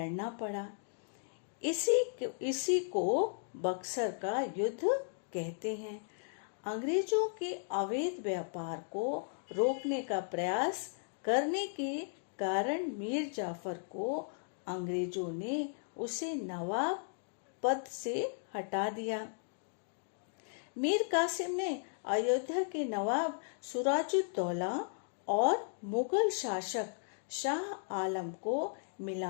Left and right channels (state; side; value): silent; right; digital silence